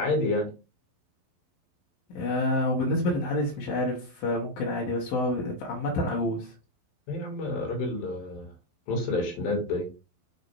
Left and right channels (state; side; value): late; right; 11 ms